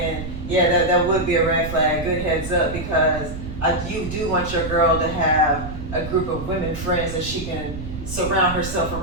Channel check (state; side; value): noise; right; rumble, 9 dB below the sound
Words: yeah, that would be a red flag. Good heads up, because you do want your girl to have a group of women friends that she can surround herself